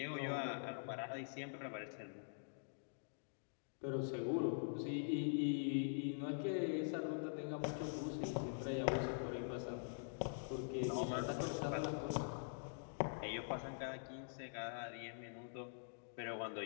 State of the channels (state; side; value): silent; right; digital silence